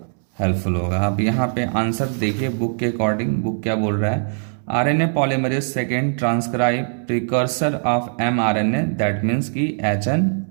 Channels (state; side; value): silent; left; 65 dB below the other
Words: हेल्पफुल होगा। अब यहाँ पे आंसर देखिए बुक के अकॉर्डिंग, बुक क्या बोल रहा है, RNA polymerase second transcribe precursor of mRNA, that means की